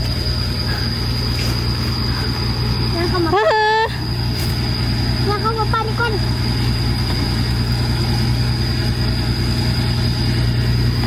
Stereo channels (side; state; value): left; noise; rumble, 22 dB below the sound